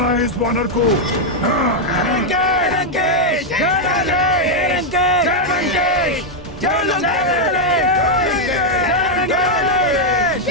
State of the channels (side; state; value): both; normal; correlation -0.01